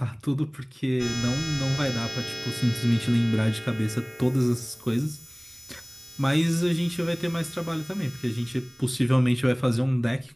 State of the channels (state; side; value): identical; both; correlation 1.00